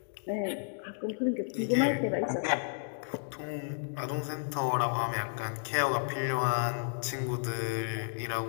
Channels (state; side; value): silent; right; digital silence